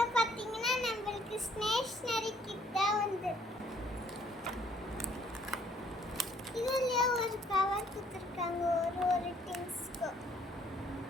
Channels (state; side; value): normal; both; correlation 0.63